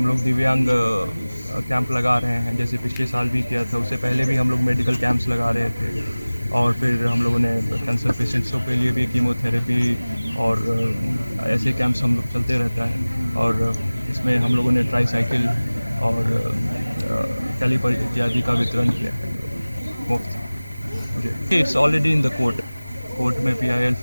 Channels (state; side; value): inverted; both; correlation -0.99